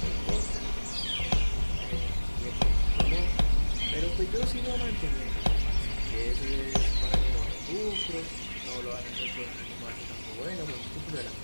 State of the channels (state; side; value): inverted; both; correlation -1.00